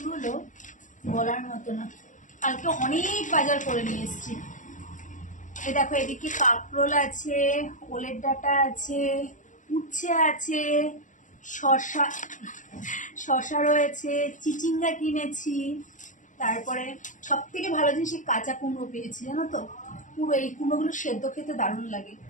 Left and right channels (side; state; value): right; late; 0.37 ms